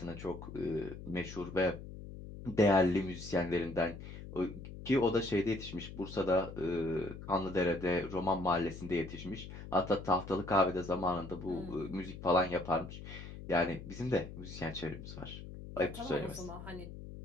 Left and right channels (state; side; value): noise; left; hum, 12 dB below the sound